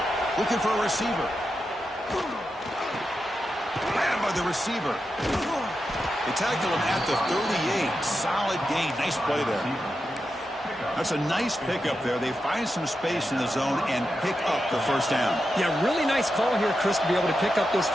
Looking for a receiver. Grabbed by the receiver. They tackled him at the 38. Solid gain. Nice play there. That's a nice pickup there. They find some space in the zone and pick up the 1st down. Yeah, really nice call here, Chris, to be able to pick up this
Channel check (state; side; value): normal; both; correlation 0.88